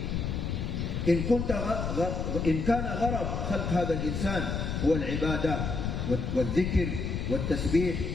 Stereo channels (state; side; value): noise; left; rumble, 2 dB below the sound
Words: إن كان غرض خلق هذا الإنسان هو العبادة والذكر والتسبيح